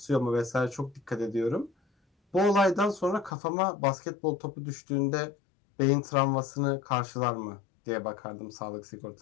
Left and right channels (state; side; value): drops out; right; at 3.3 s